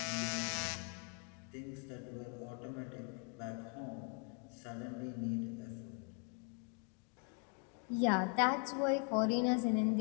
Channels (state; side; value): quieter; right; 35.4 dB